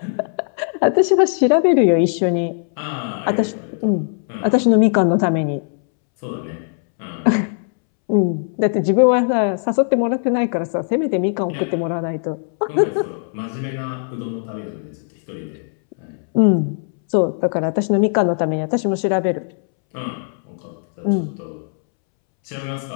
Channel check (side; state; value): right; silent; 66 dB below the other